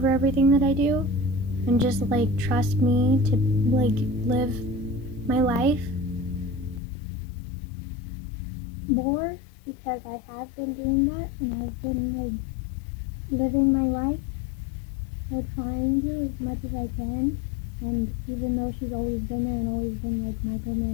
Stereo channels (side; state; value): right; drops out; at 6.8 s